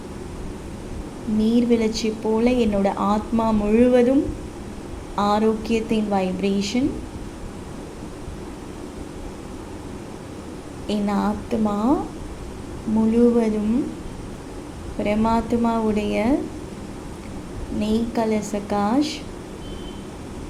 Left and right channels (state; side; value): identical; both; correlation 1.00